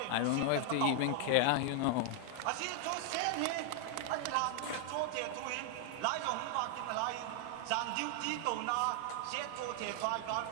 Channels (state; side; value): different; both; correlation 0.00